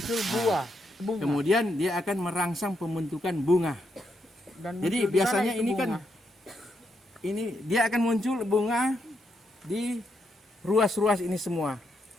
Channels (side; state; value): both; normal; correlation 0.80